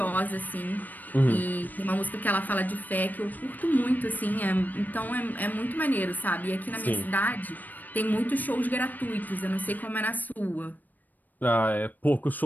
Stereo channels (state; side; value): late; right; 0.085 ms